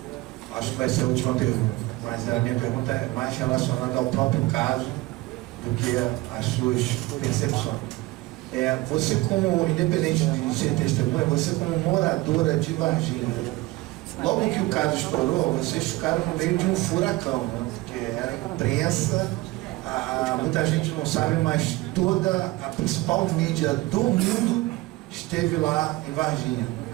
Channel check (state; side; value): quieter; left; 20.1 dB